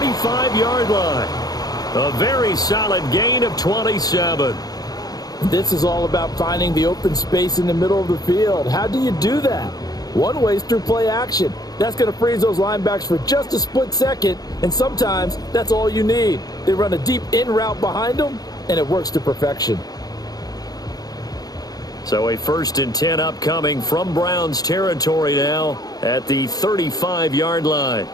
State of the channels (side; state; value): right; late; 0.19 ms